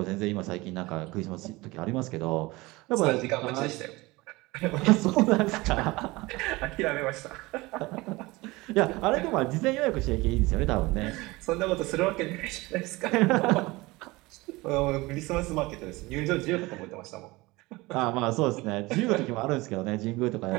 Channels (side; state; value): left; quieter; 21.8 dB